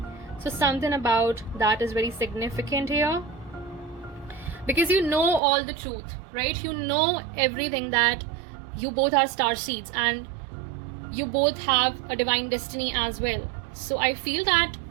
So something about that is very significant here, because you know all the truth, right? You know everything, that you both are star seeds and you both have a divine destiny as well. So I feel that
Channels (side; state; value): left; drops out; at 5.4 s